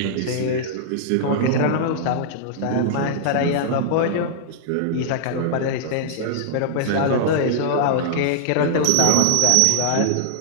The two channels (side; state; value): both; different; correlation -0.01